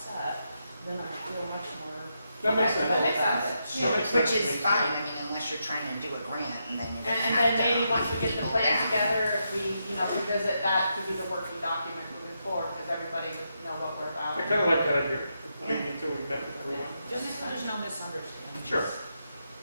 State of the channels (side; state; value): both; inverted; correlation -0.83